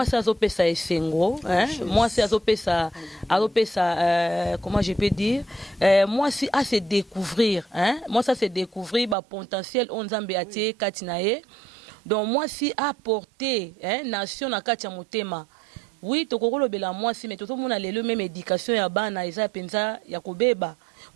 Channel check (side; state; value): left; drops out; at 9.2 s